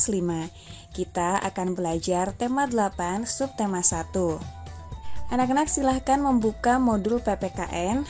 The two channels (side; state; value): both; identical; correlation 1.00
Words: 5. Kita akan belajar tema 8, subtema 1. Anak-anak silahkan membuka modul PPKN